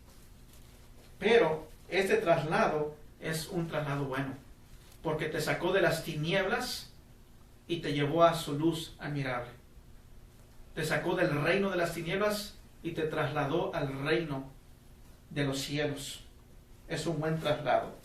Pero este traslado es un traslado bueno, porque te sacó de las tinieblas y te llevó a su luz admirable. Te sacó del reino de las tinieblas y te trasladó al reino de los cielos. Es un buen traslado.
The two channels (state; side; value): identical; both; correlation 1.00